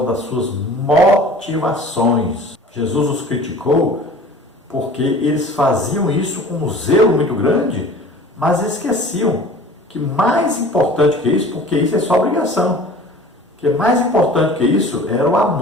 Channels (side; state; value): both; normal; correlation 0.44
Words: das suas motivações. Jesus os criticou porque eles faziam isso com um zelo muito grande, mas esqueciam que mais importante que isso, porque isso é sua obrigação, que mais importante que isso era o